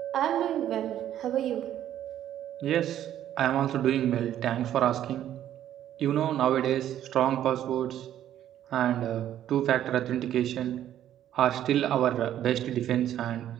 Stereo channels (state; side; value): quieter; left; 11.4 dB